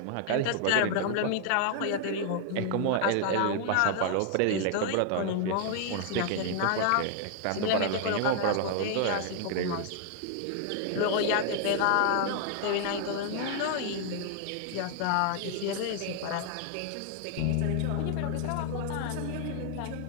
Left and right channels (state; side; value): different; both; correlation 0.00